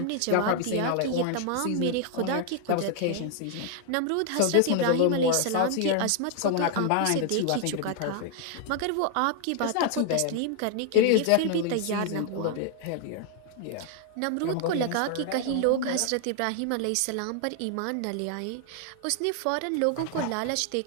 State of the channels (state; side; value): different; both; correlation 0.00